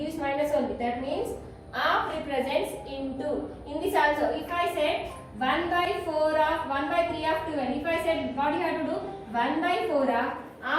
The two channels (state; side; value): identical; both; correlation 1.00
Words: minus only. That means half represents into. In this also, if I said 1 by 4 of 1 by 3 of 12, if I said what you have to do? 1 by 4 of